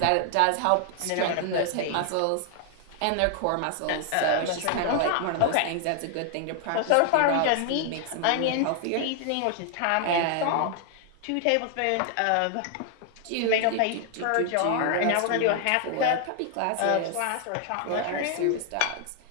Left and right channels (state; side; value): different; both; correlation 0.00